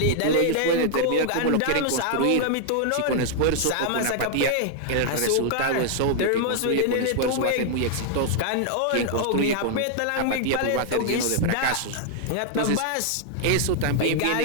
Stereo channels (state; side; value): different; both; correlation 0.00